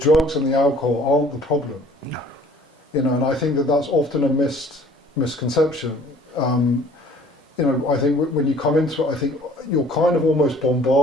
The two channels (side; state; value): both; normal; correlation 0.53